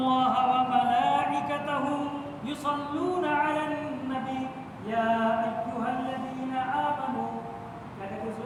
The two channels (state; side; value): identical; both; correlation 1.00